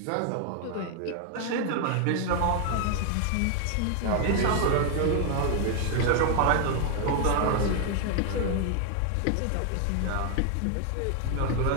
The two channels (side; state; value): both; different; correlation 0.00